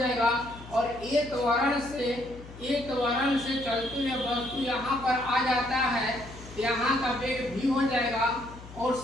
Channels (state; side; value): noise; left; hum, 16 dB below the sound